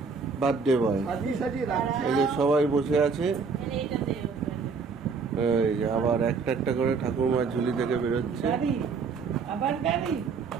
বার্থডে বয়। এই যে সবাই বসে আছে, এই যে আবার একটা একটা করে ঠাকুরমার ঝুলি থেকে বেরোচ্ছে।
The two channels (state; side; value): quieter; left; 5.1 dB